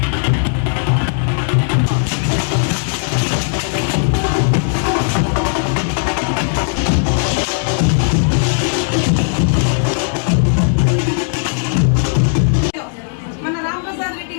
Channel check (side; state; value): right; silent; digital silence